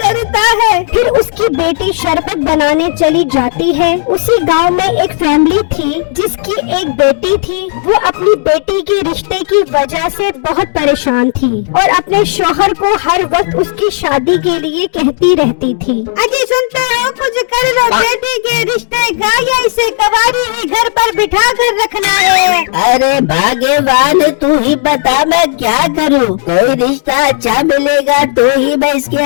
करता है। फिर उसकी बेटी शरबत बनाने चली जाती है। उसी गांव में एक फैमिली थी जिसकी एक बेटी थी। वो अपनी बेटी के रिश्ते की वजह से बहुत परेशान थी और अपने शौहर को हर वक्त उसकी शादी के लिए कहती रहती थी। अजी सुनते हो, कुछ कर लो बेटी के रिश्ते का, या इसे कवारी ही घर पर बिठा कर रखना है। अरे भाग्यवान, तू ही बता मैं क्या करूं? कोई रिश्ता अच्छा मिलेगा तो ही मैं इसके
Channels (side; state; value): right; silent; digital silence